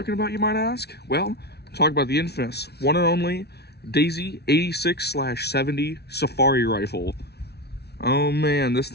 about, you might ask? Well, I'm talking about the infamous, one and only, Daisy 86/70 Safari Rifle. Oh man, this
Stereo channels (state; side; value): late; right; 0.48 ms